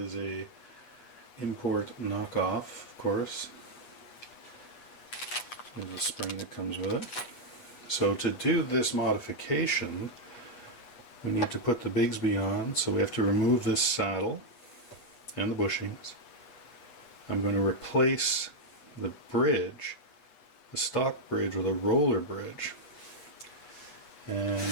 a import knockoff, of course. There's a spring that comes with it. So to do this modification, we need to put the Bigsby on, so we have to remove this saddle and the bushings. I'm going to replace the bridge, the stock bridge, with a roller bridge. And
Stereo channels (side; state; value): right; late; 8.2 ms